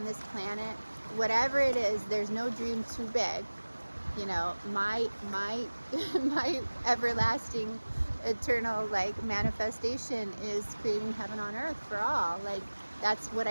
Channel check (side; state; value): both; inverted; correlation -1.00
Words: this planet. Whatever it is, there's no dream too big. You know, my my everlasting eternal like manifestation is creating heaven on earth for all. Like, that's what